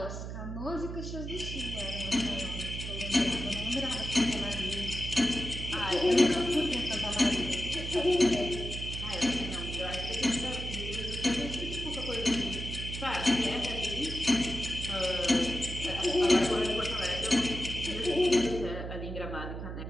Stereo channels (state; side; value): noise; right; hum, 7 dB below the sound